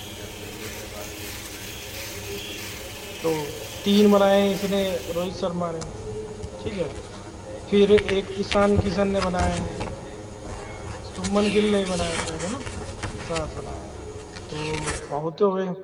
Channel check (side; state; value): both; identical; correlation 1.00